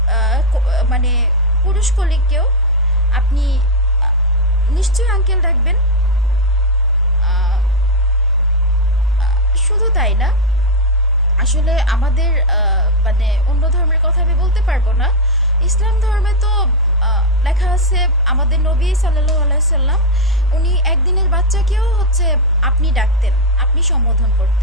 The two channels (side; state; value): both; normal; correlation 0.03